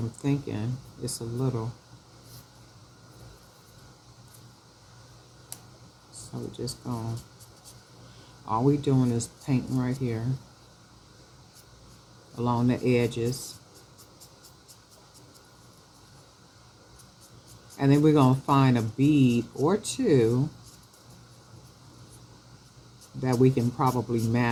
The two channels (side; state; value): both; identical; correlation 1.00